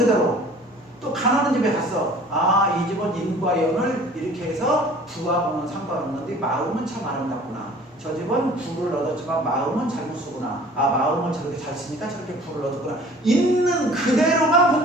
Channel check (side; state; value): both; normal; correlation 0.49